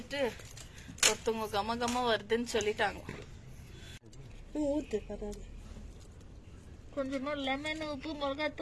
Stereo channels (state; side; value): identical; both; correlation 1.00